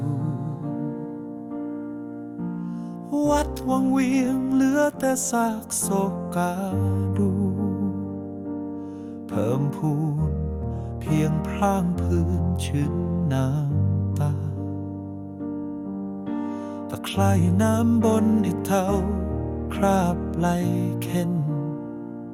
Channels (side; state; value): both; identical; correlation 1.00